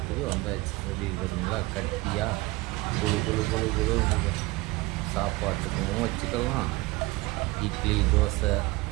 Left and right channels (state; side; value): quieter; left; 21.8 dB